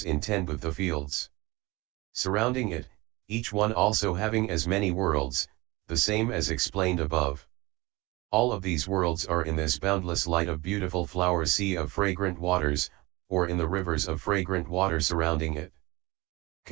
in 10 Buddha fields. Surrounding it, each one also having as many worlds, the same as explained above. All of these worlds are in this boundless light of beautiful flower sea of fragrant waters, or in the rivers of fragrant water surrounding it.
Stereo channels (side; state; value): left; quieter; 22.5 dB